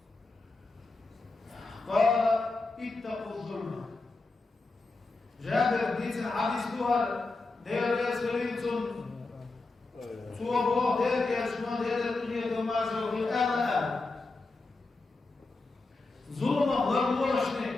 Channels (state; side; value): quieter; right; 3.4 dB